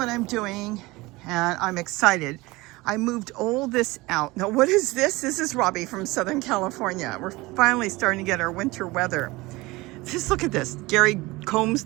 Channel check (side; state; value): left; quieter; 21.6 dB